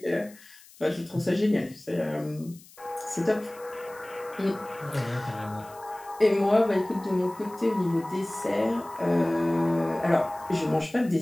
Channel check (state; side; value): noise; left; hiss, 23 dB below the sound